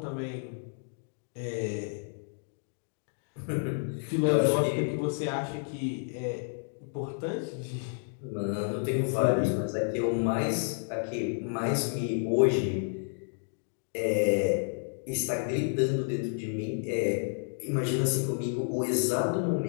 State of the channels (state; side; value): silent; right; digital silence